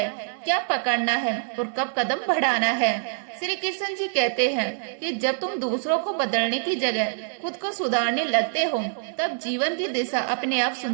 क्या पकड़ना है और कब कदम बढ़ाना है। श्री कृष्ण जी कहते हैं कि जब तुम दूसरों को बदलने की जगह खुद को सुधारने लगते हो, तब जीवन की दिशा अपने आप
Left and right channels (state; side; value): silent; left; digital silence